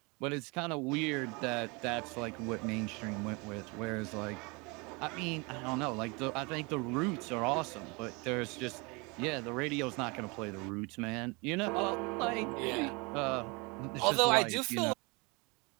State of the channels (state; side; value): quieter; left; 28.5 dB